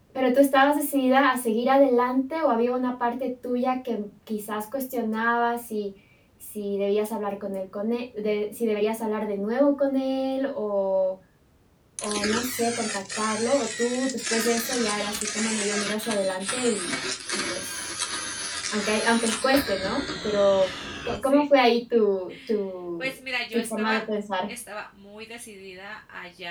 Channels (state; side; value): identical; both; correlation 1.00